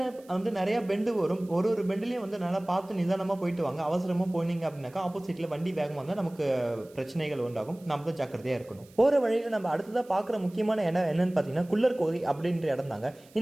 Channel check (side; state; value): right; noise; hiss, 27 dB below the sound